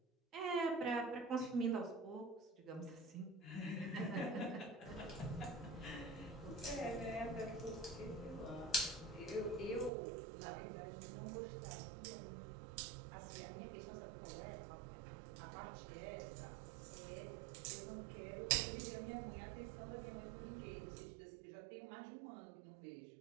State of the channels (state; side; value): drops out; left; at 9.9 s